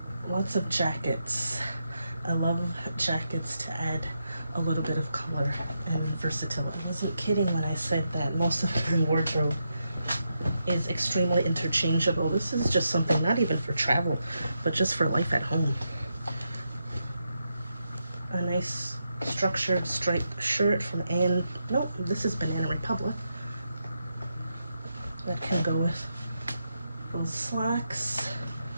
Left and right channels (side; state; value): both; inverted; correlation -0.85